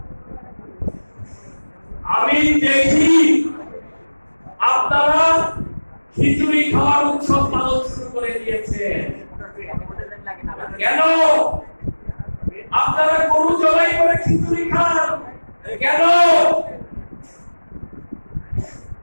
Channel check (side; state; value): both; inverted; correlation -1.00